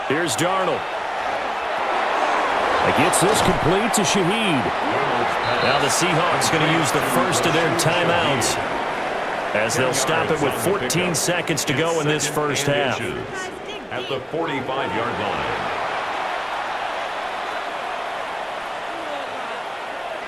Here's Darnold. He gets this complete to Shaheed. Now the Seahawks going to use the first of their timeouts as they'll stop it with 14 seconds to go in this first half. At the 45-yard line.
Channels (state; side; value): identical; both; correlation 1.00